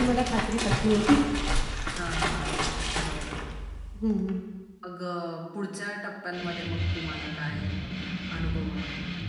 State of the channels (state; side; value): identical; both; correlation 1.00